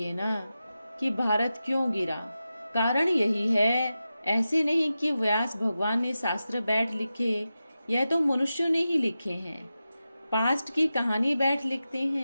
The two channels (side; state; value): both; inverted; correlation -0.92